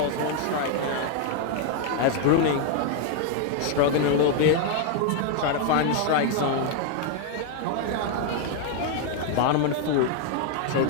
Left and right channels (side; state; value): both; different; correlation 0.00